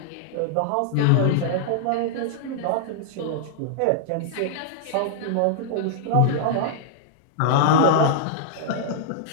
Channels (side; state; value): both; different; correlation -0.01